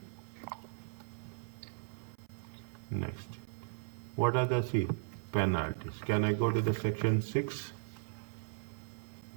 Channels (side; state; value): left; silent; 53 dB below the other